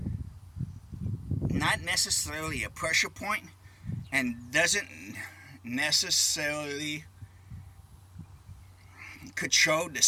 not necessarily a pressure point and doesn't necessarily control the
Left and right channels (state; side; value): identical; both; correlation 1.00